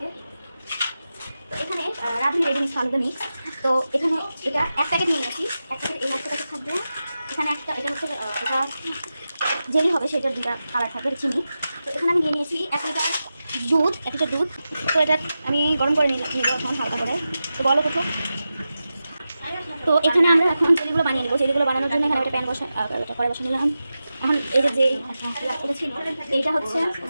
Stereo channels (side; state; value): both; inverted; correlation -0.92